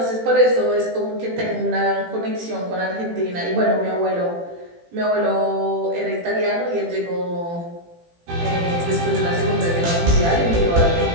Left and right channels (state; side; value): late; left; 18 ms